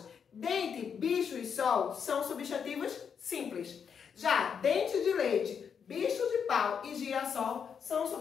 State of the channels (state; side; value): quieter; right; 7.0 dB